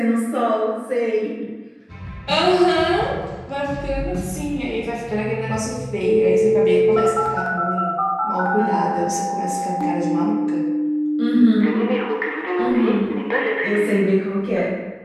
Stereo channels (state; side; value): identical; both; correlation 1.00